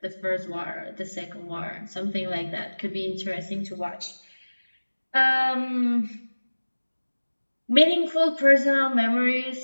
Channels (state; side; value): inverted; both; correlation -1.00